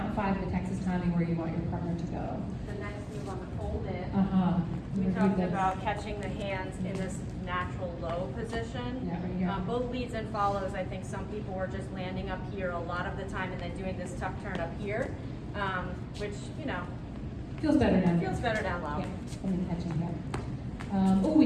5 of the Texas Tommy where you want your partner to go. the next move on the fold in. Uh-huh. We Review talked this. about catching the hands in this natural low position. Yeah, right here. Both leads and follows, I think some people were just landing up here a lot of the time and then doing this tuck turn up here, which, you know, Feels better down here. feels better down low. Yeah, and then catching here.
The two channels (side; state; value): both; identical; correlation 1.00